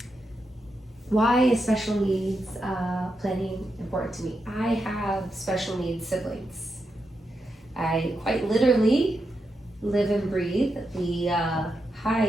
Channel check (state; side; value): normal; both; correlation 0.86